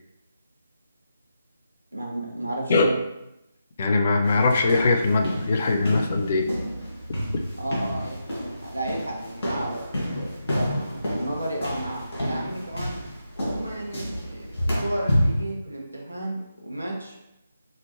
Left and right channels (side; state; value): both; inverted; correlation -0.84